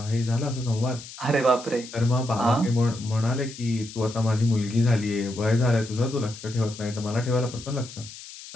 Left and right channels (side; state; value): left; noise; hiss, 15 dB below the sound